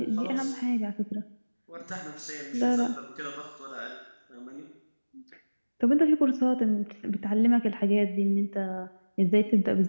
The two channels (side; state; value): both; inverted; correlation -1.00